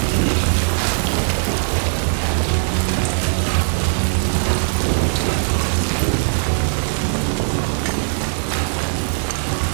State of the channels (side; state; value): left; silent; digital silence